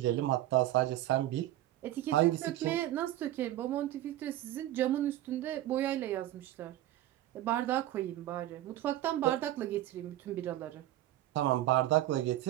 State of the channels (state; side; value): quieter; left; 14.3 dB